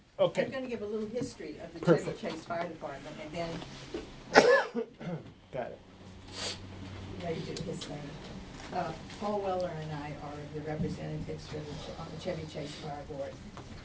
I'm Okay, gonna give a little history of the Perfect. Chevy Chase Fire Department, and then got it. ready to do his thing. Paul Weller and I are the representatives for on the Chevy Chase Fire Board.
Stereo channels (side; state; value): both; identical; correlation 1.00